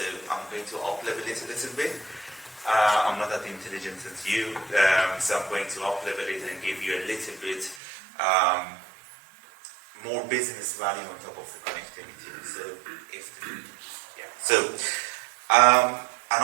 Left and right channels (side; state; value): left; drops out; at 7.8 s